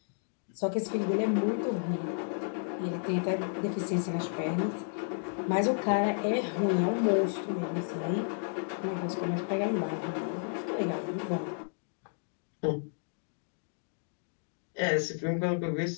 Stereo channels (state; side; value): silent; right; digital silence